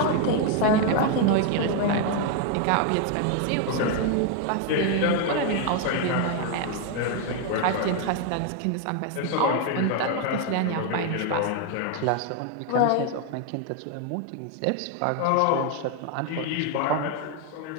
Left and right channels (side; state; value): both; different; correlation 0.01